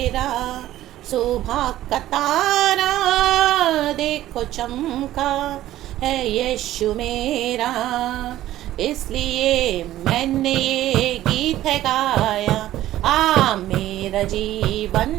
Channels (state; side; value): quieter; left; 14.1 dB